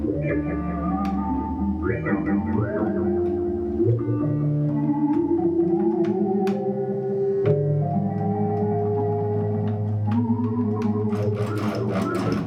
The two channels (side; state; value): both; identical; correlation 1.00